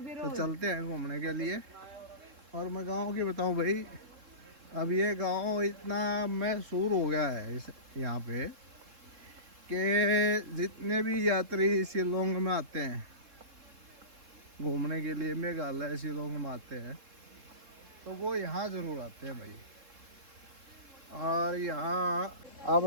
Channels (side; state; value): left; late; 3.7 ms